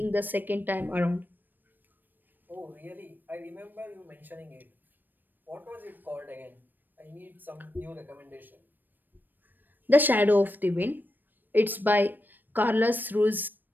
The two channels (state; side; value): late; left; 0.091 ms